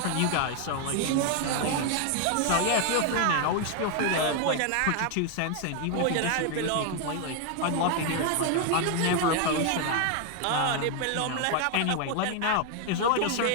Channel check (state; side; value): different; both; correlation 0.01